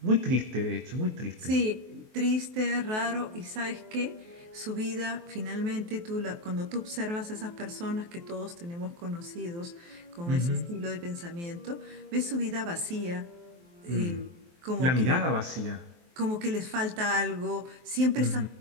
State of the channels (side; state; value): left; late; 23 ms